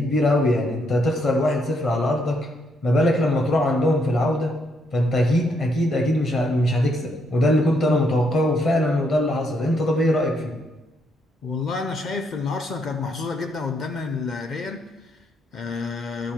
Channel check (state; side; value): normal; both; correlation 0.75